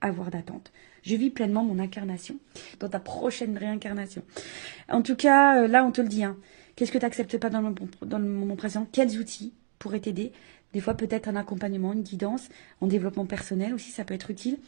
avoir d'attente? Je vis pleinement mon incarnation dans ta prochaine réincarnation. En tout cas, là, on te le dit. Hein. Qu'est-ce que tu n'acceptes pas dans le moment présent? Quels outils pourraient t'aider? Des fois, peut-être un accompagnement, une guidance, en développement personnel aussi, ça peut être utile.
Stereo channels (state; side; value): silent; left; digital silence